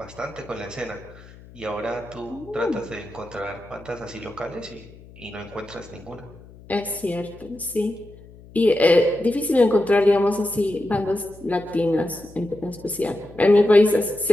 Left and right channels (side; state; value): left; noise; hum, 21 dB below the sound